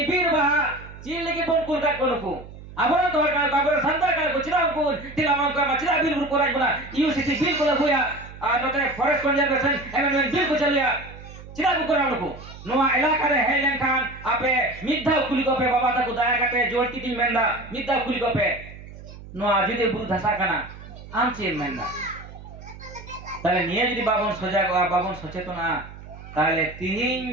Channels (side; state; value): right; noise; hum, 16 dB below the sound